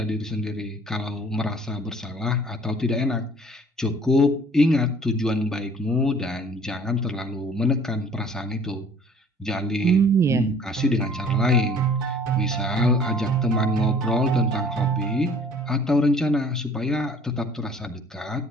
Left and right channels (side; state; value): both; normal; correlation 0.52